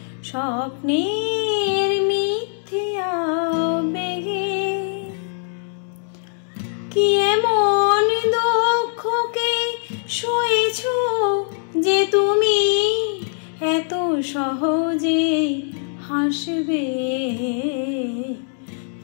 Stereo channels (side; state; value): right; silent; digital silence